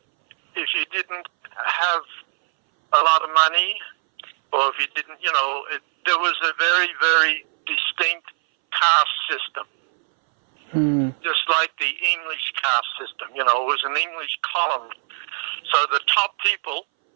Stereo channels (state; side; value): silent; left; 63 dB below the other